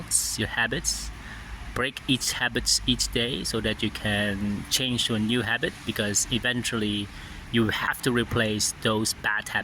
your habits. Break each habit each day so that you can change to a new habit, because eventually you have to replace those bad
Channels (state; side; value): identical; both; correlation 1.00